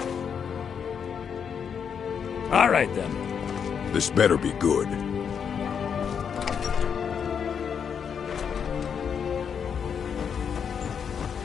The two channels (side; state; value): right; quieter; 7.2 dB